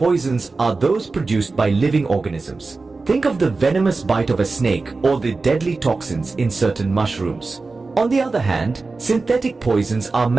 are those produced by living organisms. Think of the venomous bite of a snake or the deadly toxins in certain mushrooms. On the other hand, synthetic poisons are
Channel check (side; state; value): left; quieter; 3.8 dB